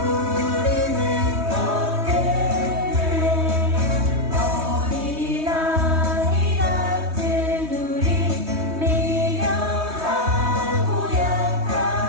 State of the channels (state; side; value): late; left; 3.2 ms